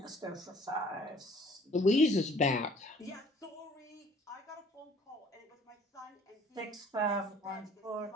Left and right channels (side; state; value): both; normal; correlation 0.55